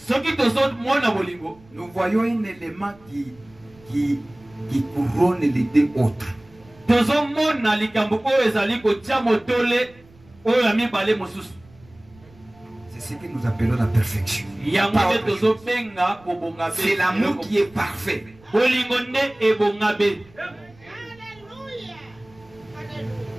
nous voyons un élément qui couronne les deux autres. C'est ce que nous appelons la perfection. C'est l'amour qui est parfait.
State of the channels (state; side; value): noise; right; rumble, 27 dB below the sound